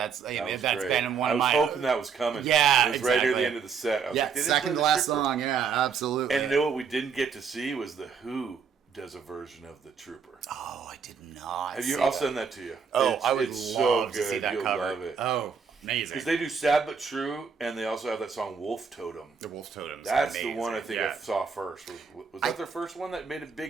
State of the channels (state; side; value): quieter; left; 6.1 dB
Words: That was that's great. been one I of was my. hoping that was coming. Yeah, it was right near exactly. the end of the set. I was like, they didn't second play to the last Trooper. song. Yeah, absolutely. And you know what we didn't get to see was the Who does a version of the Trooper. Oh, I did not. Have you? see I'll that. send that to you. Oh, it's, I would it's love so to see good. that You'll cover. love it. Oh, amazing. Because they do Sad But True, and they also have that song Wolf Totem. The Wolf Totems. That's amazing. the one I think Yeah. I saw first. Was that their first one that made a